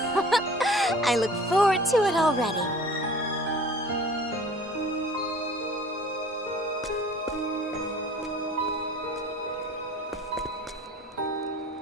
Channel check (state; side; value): normal; both; correlation 0.46